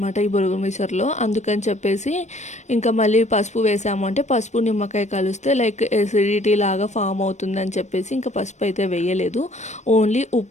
ఈ బొరుగుల మిక్చర్లో. అందుకని చెప్పేసి ఇంకా మళ్ళీ పసుపు వేసాము అంటే పసుపు నిమ్మకాయ కలిస్తే లైక్ ఎసిడిటీ లాగా ఫామ్ అవుతుందని చెప్పేసి ఇంకా పసుపు అయితే వేయలేదు. ఓన్లీ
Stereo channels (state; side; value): late; right; 0.34 ms